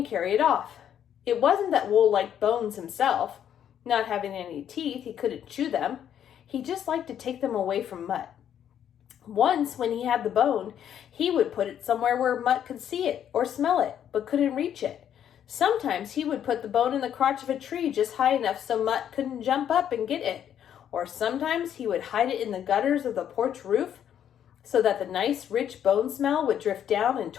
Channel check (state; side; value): quieter; right; 9.7 dB